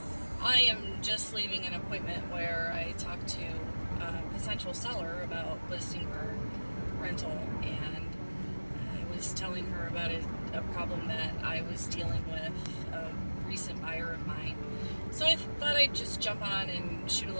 I am just leaving an appointment where I talked to a potential seller about listing her rental, and I was telling her about a problem that I was dealing with, a recent buyer of mine. So I thought I'd just jump on and shoot a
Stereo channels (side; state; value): both; inverted; correlation -1.00